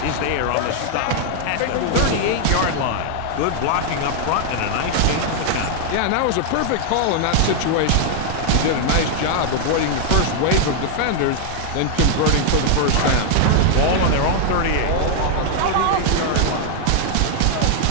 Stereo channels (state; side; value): different; both; correlation 0.00